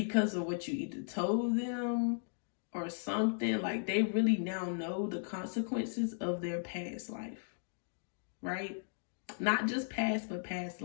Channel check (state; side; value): silent; right; digital silence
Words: of what you either told them or something. Like they really now know the consequences of their past life, right? Not just past, but past